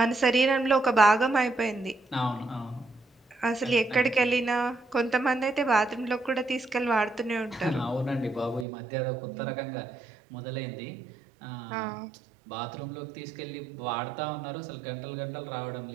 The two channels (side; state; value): left; drops out; at 8.7 s